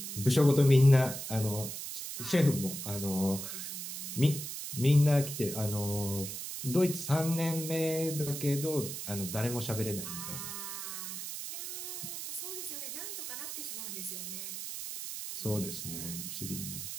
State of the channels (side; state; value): right; noise; hiss, 7 dB below the sound